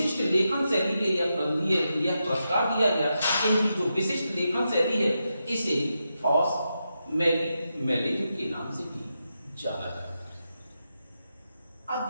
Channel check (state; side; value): inverted; both; correlation -0.87